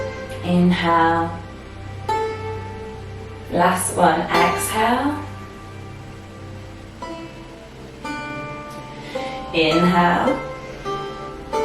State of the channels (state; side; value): identical; both; correlation 1.00